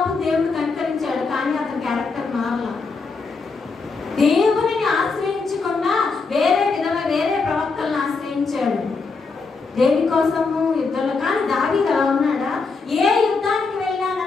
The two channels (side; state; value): right; quieter; 4.4 dB